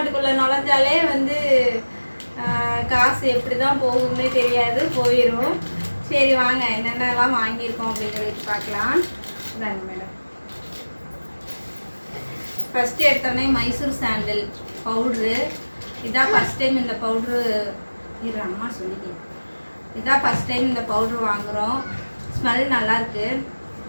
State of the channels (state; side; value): inverted; both; correlation -1.00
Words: நுழைஞ்சாலே வந்து காசு எப்படி தான் போகும்னே தெரியாது, போயிடும். சரி வாங்க என்னென்னலாம் வாங்கியிருக்கோம் அப்படின்னு சொல்லிட்டு பார்க்கலாம். தாங்க மேடம், ஃபஸ்ட்டு எடுத்தோடனே மைசூர் சாண்டில் பவுட்ரு. இதான் ஃபஸ்ட் டைம் இந்த பவுட்ரு அம்மா சொல்லிட்டேன். இதான் ஃபஸ்ட் டைம் இந்த பவுட்ரு வாங்குகிறோம். ஸ்மெல் நல்லாயிருக்கு.